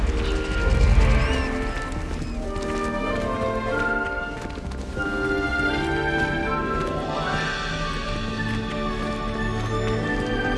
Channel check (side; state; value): both; identical; correlation 1.00